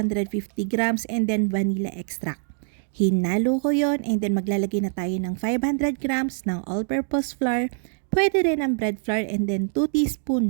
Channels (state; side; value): silent; left; digital silence